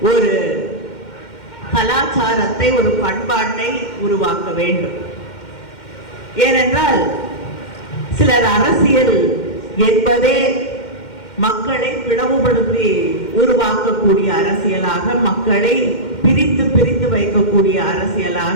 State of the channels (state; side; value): late; right; 2.1 ms